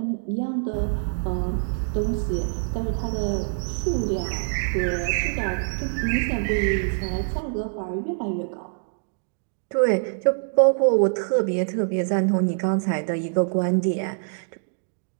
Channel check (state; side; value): silent; left; digital silence